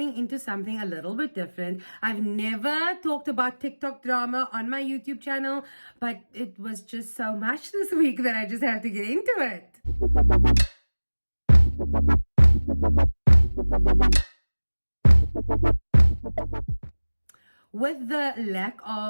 into something a little bit different. I've never talked about TikTok drama on my YouTube channel, but it was just so much this week that I just have to get into it. With the lack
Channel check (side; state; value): both; inverted; correlation -1.00